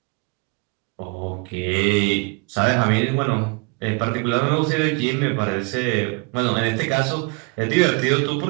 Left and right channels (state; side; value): quieter; left; 30.9 dB